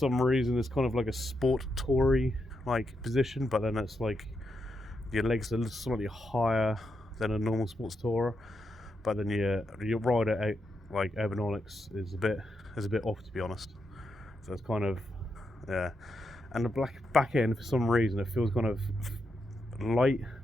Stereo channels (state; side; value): normal; both; correlation 0.83